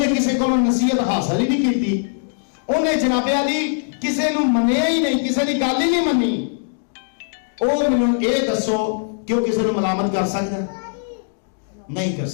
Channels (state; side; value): silent; right; digital silence